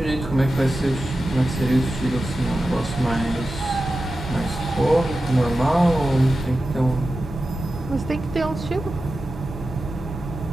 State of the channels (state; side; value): normal; both; correlation 0.93